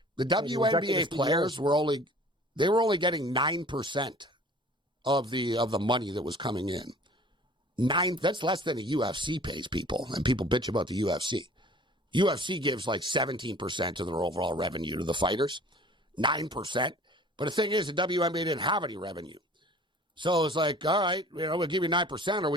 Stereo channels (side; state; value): both; normal; correlation 0.48